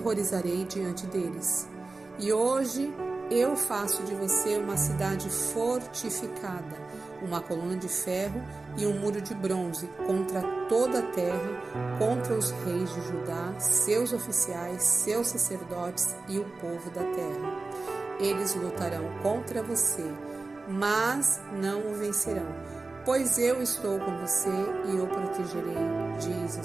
diante deles. E hoje eu faço de você uma cidade fortificada, uma coluna de ferro e um muro de bronze contra toda a terra, contra os reis de Judá, seus oficiais, seus sacerdotes e o povo da terra. Eles lutarão contra você, mas não o vencerão, pois eu estou com você e o protegerei, diz o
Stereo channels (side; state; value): left; quieter; 3.6 dB